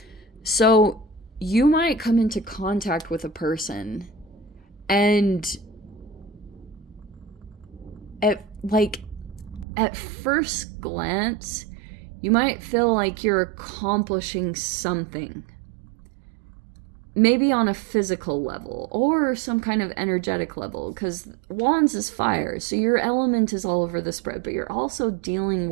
So you might come into contact with a person, and at first glance, you might feel like you're accomplishing something. Maybe on a physical level or some kind of energetic level, because Wands is fire, so your element is all over the spread, but you're also dealing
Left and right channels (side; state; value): left; drops out; at 9.7 s